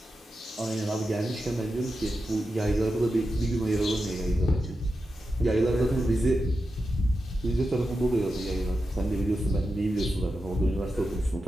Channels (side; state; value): both; normal; correlation 0.90